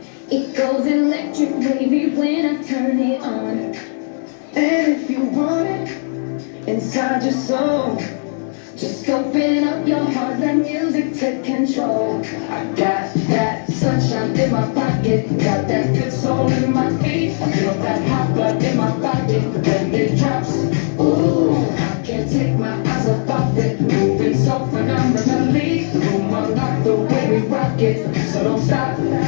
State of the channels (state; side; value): silent; right; digital silence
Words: It goes electric wavy when I turn it on. And if you want it inside your soul, Just open up your heart, let music take control. I got that sunshine in my pocket, got that good soul in my feet. I feel that hot blood in my body when it drops. Ooh, I can't take my eyes off of it, moving so phenomenally. The room unlocked the way we rock it, so don't stop.